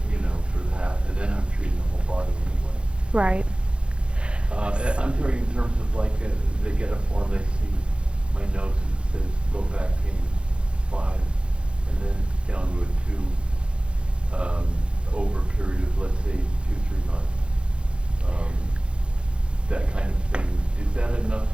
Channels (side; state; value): left; late; 0.056 ms